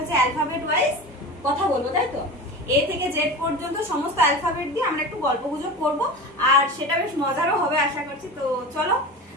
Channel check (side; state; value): both; normal; correlation 0.30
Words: অ্যালফাবেট ওয়াইজ কথা বলবো, তাই তো? এ থেকে জেড পর্যন্ত সমস্ত অ্যালফাবেট দিয়ে আমরা একটু গল্প গুজব করবো, আর সেটা বেশ মজারও হবে আশা করছি। তো চলো